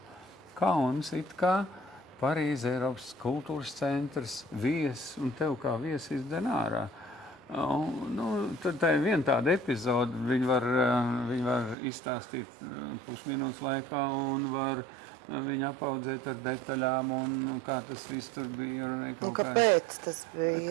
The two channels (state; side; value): drops out; left; at 11.8 s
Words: Kauns it kā Parīze, Eiropas kultūras centrs, viesis, un tev kā viesis izdzen ārā. Tad tā ir viena tāda epizode, viņi var izstāstīt pusminūtes laikā un var viņu apaudzēt ar detaļām un kā tas viss tur bija. Kāpēc tas bija?